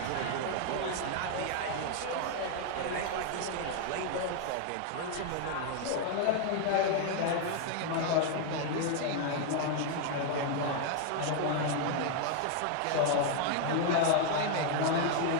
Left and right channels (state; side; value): different; both; correlation 0.00